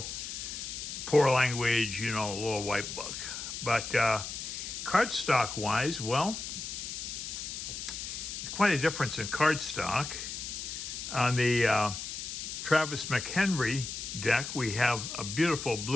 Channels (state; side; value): noise; left; hiss, 6 dB below the sound